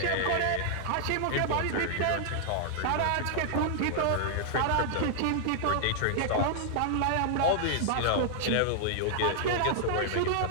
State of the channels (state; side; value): different; both; correlation -0.01